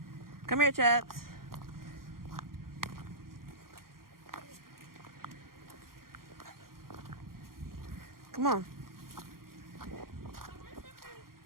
Come here, chaps. Come on.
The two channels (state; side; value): late; left; 0.92 ms